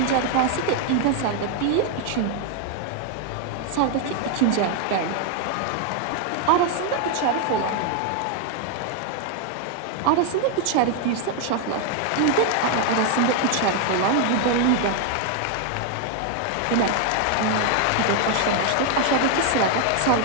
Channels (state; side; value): different; both; correlation 0.01